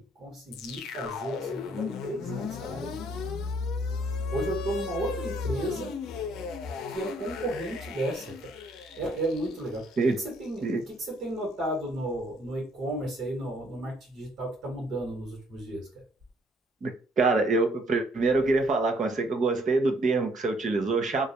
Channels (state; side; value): normal; both; correlation 0.65